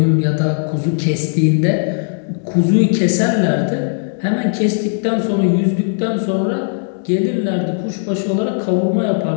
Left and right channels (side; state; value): right; silent; digital silence